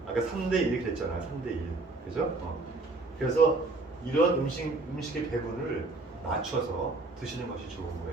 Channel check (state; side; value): quieter; left; 3.4 dB